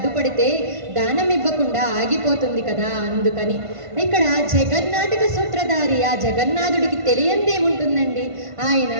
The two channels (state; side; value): late; left; 1.5 ms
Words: దానం ఇవ్వకుండా ఆగిపోతుంది కదా, అందుకని. ఇక్కడ జగన్నాటక సూత్రధారి ఆ జగన్నాథుడికి తెలియందేముంటుందండి. ఆయన